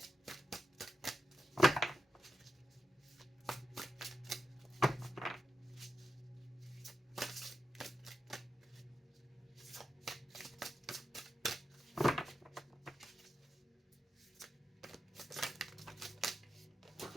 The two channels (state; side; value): normal; both; correlation 0.87